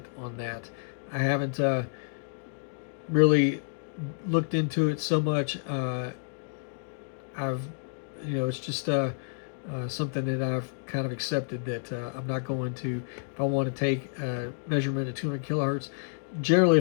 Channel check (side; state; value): right; silent; digital silence